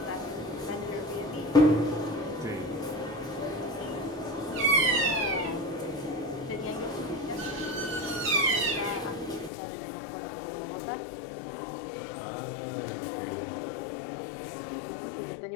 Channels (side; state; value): right; drops out; at 9.5 s